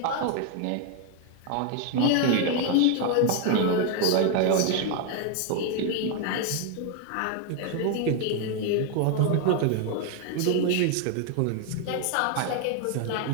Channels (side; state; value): both; different; correlation 0.01